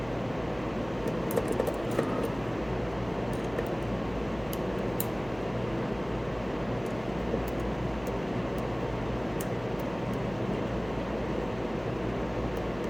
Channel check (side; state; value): right; noise; hum, 16 dB below the sound